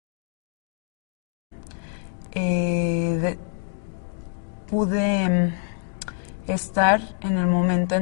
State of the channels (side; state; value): right; silent; digital silence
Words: Pude estar en el momento